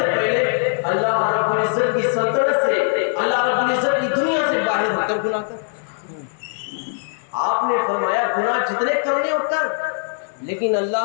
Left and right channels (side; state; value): right; silent; digital silence